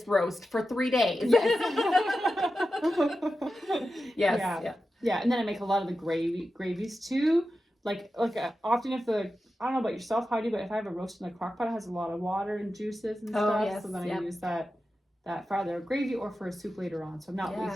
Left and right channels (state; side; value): normal; both; correlation 0.91